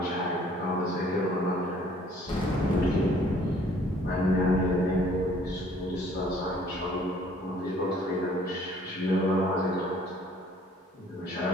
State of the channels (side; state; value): both; normal; correlation 0.58